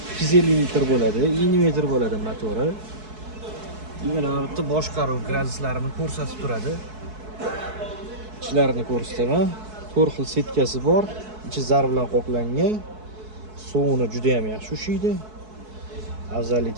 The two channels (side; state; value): left; late; 4.6 ms